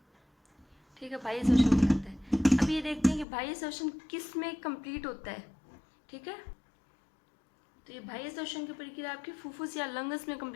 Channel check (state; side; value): drops out; right; at 3.2 s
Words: ठीक है, बाह्य श्वसन कहलाता है। अब ये देखते हैं कि बाह्य श्वसन किस में कंप्लीट होता है। ठीक है, तो ये बाह्य श्वसन की प्रक्रिया आपकी फुफ्फुस या लंग्स में